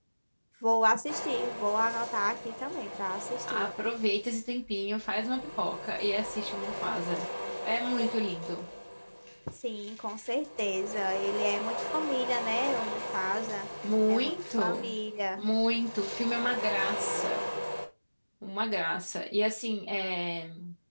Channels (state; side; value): inverted; both; correlation -1.00